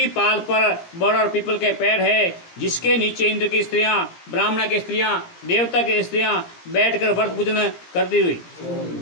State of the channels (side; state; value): right; late; 17 ms